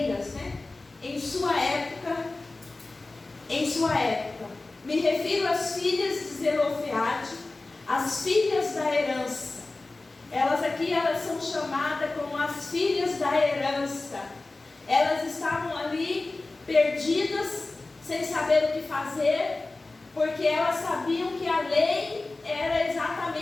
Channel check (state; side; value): quieter; right; 3.2 dB